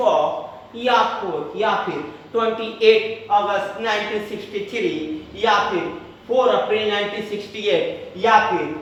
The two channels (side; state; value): both; identical; correlation 1.00